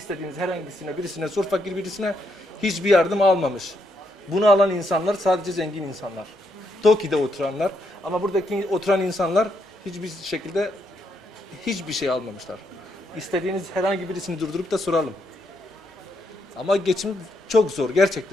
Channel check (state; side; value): normal; both; correlation 0.77